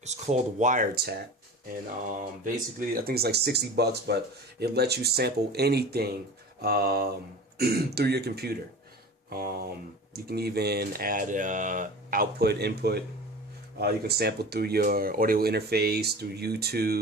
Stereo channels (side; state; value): both; normal; correlation 0.36